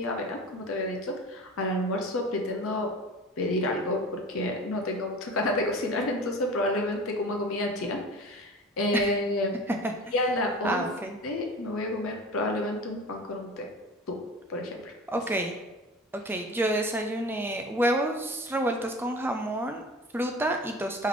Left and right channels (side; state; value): both; normal; correlation 0.37